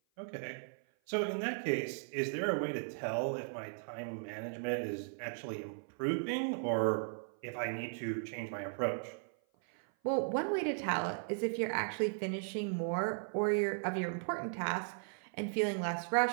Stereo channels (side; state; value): left; silent; 53 dB below the other